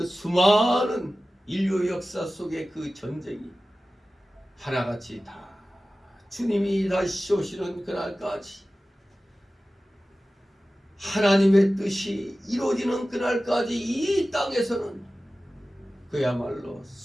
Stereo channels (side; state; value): both; normal; correlation 0.96